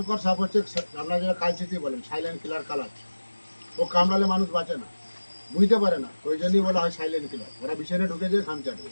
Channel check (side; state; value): both; inverted; correlation -1.00